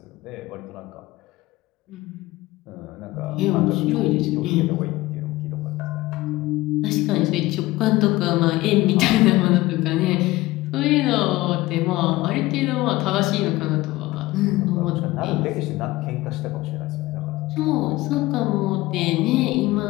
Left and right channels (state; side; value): quieter; right; 18.7 dB